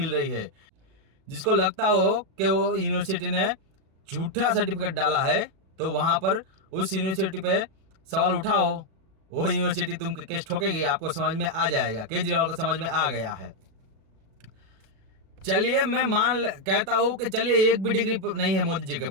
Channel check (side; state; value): left; late; 37 ms